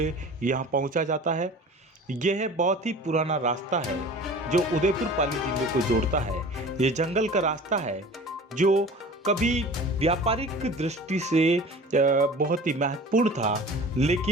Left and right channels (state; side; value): normal; both; correlation 0.41